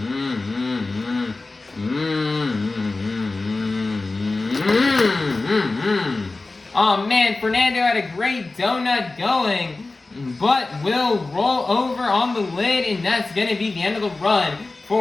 Oh man, Fernando had a great donut going, but will roll over on the lid, and that's going to be the end of the run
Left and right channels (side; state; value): right; quieter; 3.4 dB